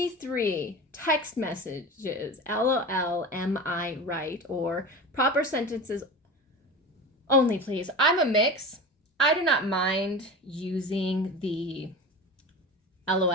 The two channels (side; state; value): both; normal; correlation 0.30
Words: text messages, LOL, am I right? Or proper sentences only, please. I'm a mix. I do not mind using the